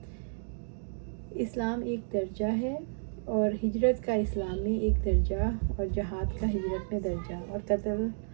اسلام ایک درجہ ہے اور ہجرت کا اسلام میں ایک درجہ، اور جہاد کا ہجرت میں درجہ، اور قتل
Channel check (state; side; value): silent; left; digital silence